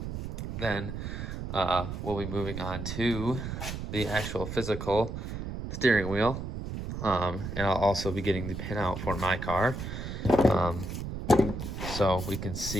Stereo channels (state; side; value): noise; right; rumble, 6 dB below the sound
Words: Then we'll be moving on to the actual physical steering wheel. And I'll also be getting the pin out for my car, so we can